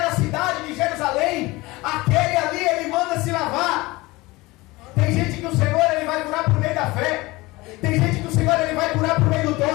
cidade de Jerusalém, aquele ali, ele manda se lavar. Tem gente que o Senhor, ele vai curar por meio da fé. Tem gente que o Senhor, ele vai curar por meio do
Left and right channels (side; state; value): right; quieter; 21.6 dB